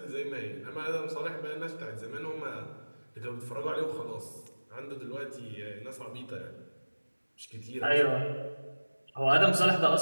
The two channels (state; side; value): inverted; both; correlation -1.00